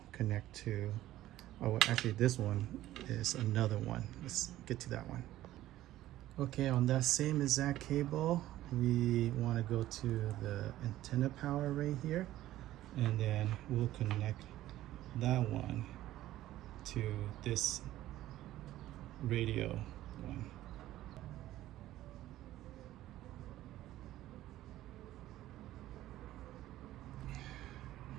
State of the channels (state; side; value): quieter; left; 14.5 dB